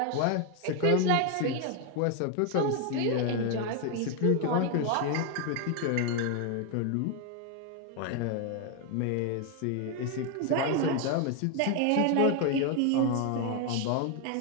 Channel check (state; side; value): different; both; correlation 0.01